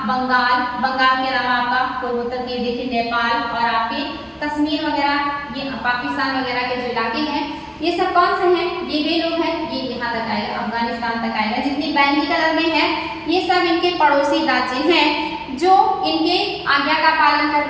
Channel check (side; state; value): both; identical; correlation 1.00